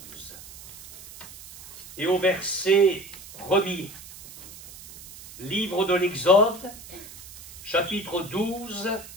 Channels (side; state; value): right; noise; hiss, 17 dB below the sound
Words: et au verset 1er. Livre de l'Exode, chapitre 12,